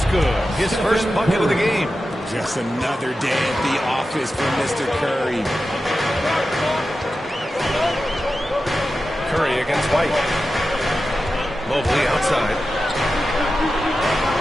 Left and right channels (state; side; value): normal; both; correlation 0.92